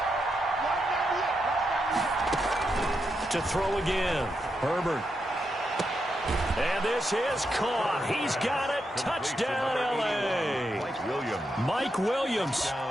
To throw again. Herbert. And this is caught. He's got it. Touchdown, L.A. Mike Williams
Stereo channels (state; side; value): normal; both; correlation 0.84